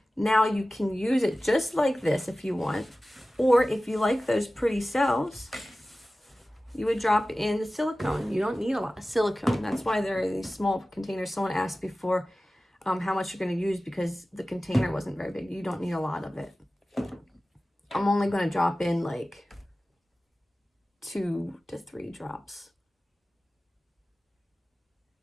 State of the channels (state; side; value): normal; both; correlation 0.96